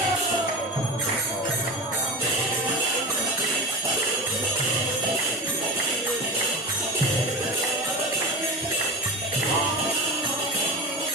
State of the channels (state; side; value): normal; both; correlation 0.25